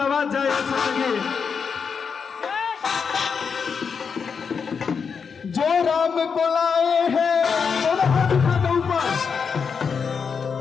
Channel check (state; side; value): quieter; right; 6.0 dB